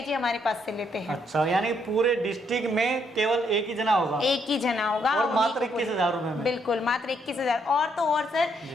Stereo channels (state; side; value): normal; both; correlation 0.73